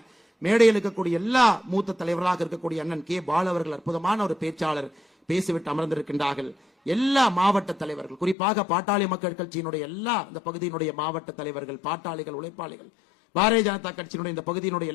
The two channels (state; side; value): drops out; right; at 8.3 s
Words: மேடையில் இருக்கக்கூடிய எல்லா மூத்த தலைவராக இருக்கக்கூடிய அண்ணன் கே. பால் அவர்கள் அற்புதமான ஒரு பேச்சாளர் பேசிவிட்டு அமர்ந்திருக்கின்றார்கள். எல்லா மாவட்ட தலைவர்கள், குறிப்பாக பாட்டாளி மக்கள் கட்சியினுடைய எல்லா இந்த பகுதியினுடைய மாவட்ட தலைவர்கள், பாட்டாளிகள், உழைப்பாளிகள், பாரதிய ஜனதா கட்சியினுடைய இந்த பகுதியினுடைய